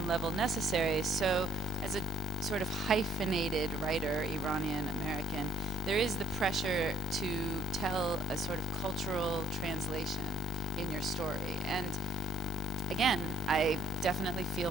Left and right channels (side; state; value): both; normal; correlation 0.64